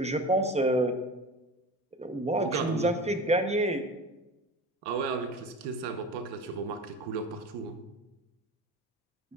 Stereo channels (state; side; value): normal; both; correlation 0.34